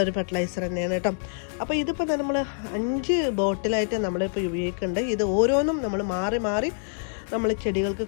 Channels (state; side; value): silent; right; digital silence